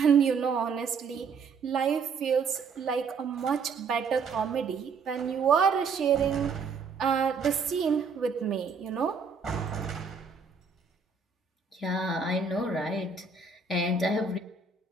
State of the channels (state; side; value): quieter; left; 5.1 dB